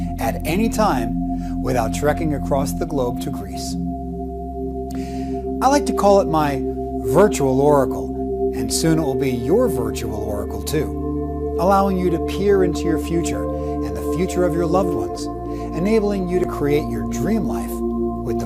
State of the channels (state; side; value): identical; both; correlation 1.00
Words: at any time without trekking across the globe to Greece. I like to call it my virtual oracle, and soon it will be your virtual oracle too, allowing you to peer into your future and the future of your loved ones, enabling you to create your dream life with